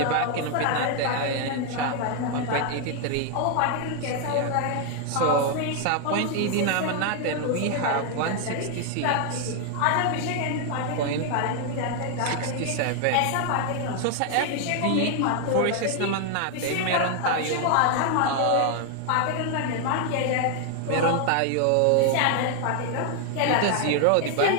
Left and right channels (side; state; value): both; different; correlation 0.00